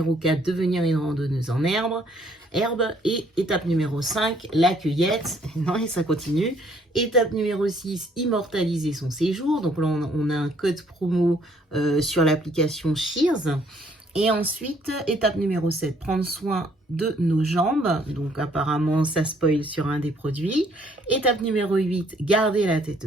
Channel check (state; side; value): normal; both; correlation 0.65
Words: 4, devenir une randonneuse en herbe. Et étape numéro 5, la cueillette. Non, et ça continue. Étape numéro 6, immortaliser son séjour. Donc là, on a un code promo sur l'application Shears. Et ensuite, étape numéro 7, prendre soin de nos jambes. Donc apparemment, ça spoil sur un des produits. Étape numéro 8, garder la tête